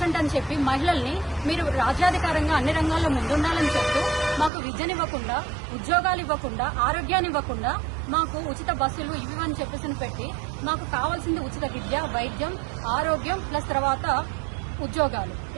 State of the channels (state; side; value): drops out; left; at 4.5 s